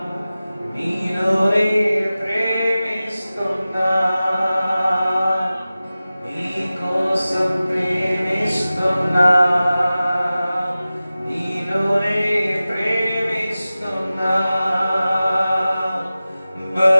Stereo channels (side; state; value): both; inverted; correlation -0.96